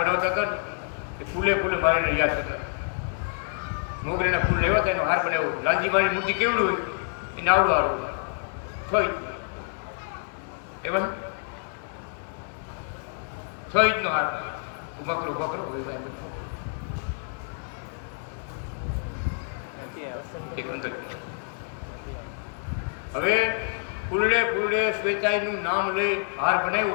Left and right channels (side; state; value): right; silent; digital silence